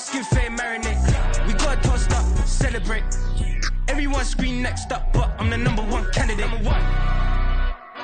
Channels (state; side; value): identical; both; correlation 1.00